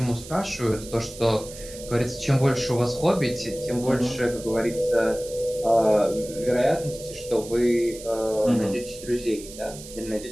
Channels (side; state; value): right; noise; hiss, 15 dB below the sound